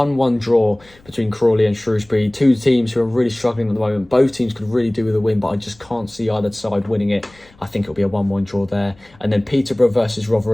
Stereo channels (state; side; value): noise; left; rumble, 28 dB below the sound